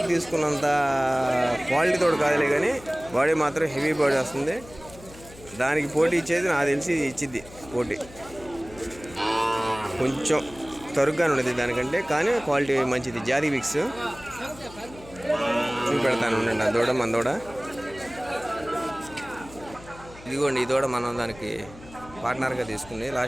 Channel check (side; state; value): left; noise; hum, 19 dB below the sound